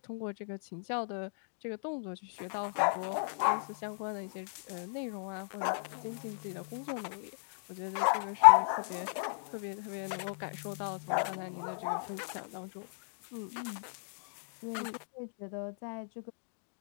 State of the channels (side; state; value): right; silent; digital silence